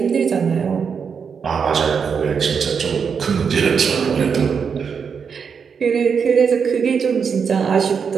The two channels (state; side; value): quieter; left; 6.4 dB